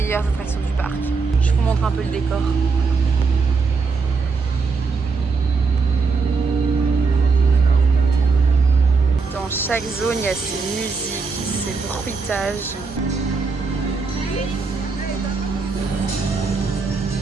attractions du parc. Je vous montre un peu le décor. Dans chaque zone, il y a ces musiques, ces bruitages.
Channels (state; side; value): quieter; left; 4.6 dB